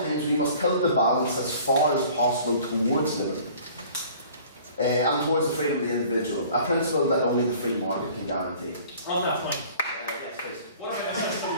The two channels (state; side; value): inverted; both; correlation -0.49